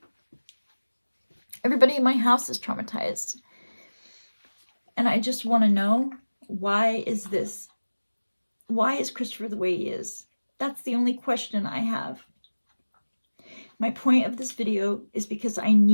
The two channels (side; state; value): both; inverted; correlation -1.00